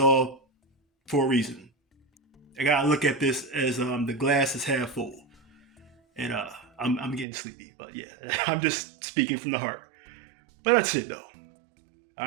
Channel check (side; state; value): left; drops out; at 7.2 s